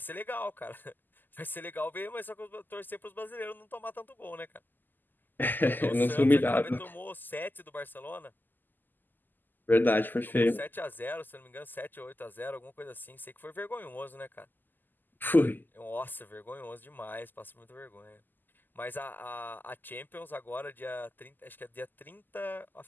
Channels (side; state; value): right; late; 0.088 ms